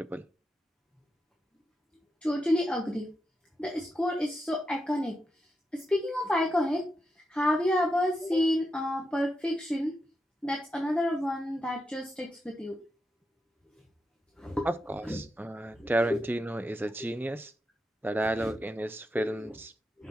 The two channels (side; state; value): both; normal; correlation 0.86